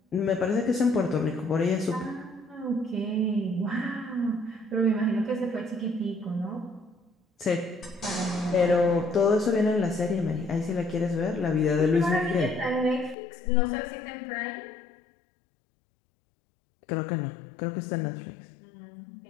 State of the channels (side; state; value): right; drops out; at 13.2 s